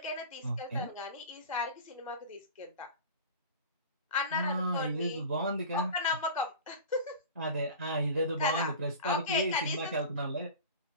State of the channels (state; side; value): inverted; both; correlation -0.34